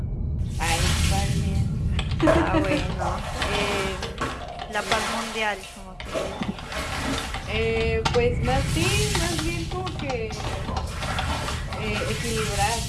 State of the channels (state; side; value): identical; both; correlation 1.00